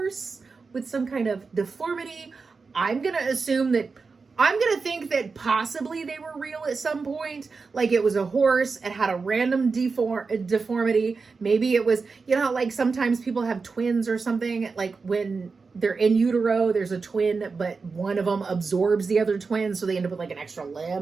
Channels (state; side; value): quieter; left; 4.6 dB